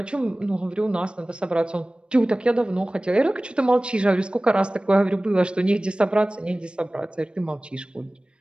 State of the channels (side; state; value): left; late; 0.055 ms